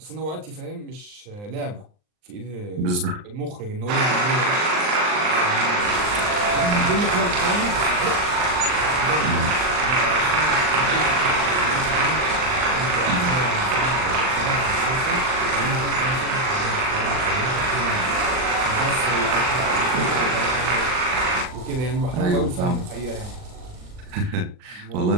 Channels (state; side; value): late; left; 39 ms